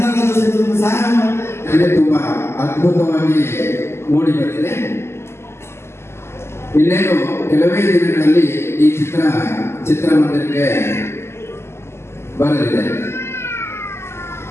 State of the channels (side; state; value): right; late; 0.12 ms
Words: ಸಹಾಯ ಮಾಡಿ ತುಂಬಾ ಅದ್ಭುತವಾಗಿ ಮೂಡಿ ಬಂದಿದೆ. ಇನ್ನೇನು ಕೆಲವೇ ದಿನಗಳಲ್ಲಿ ಈ ಚಿತ್ರಮಂದಿರಕ್ಕೆ ಬರಲಿದೆ.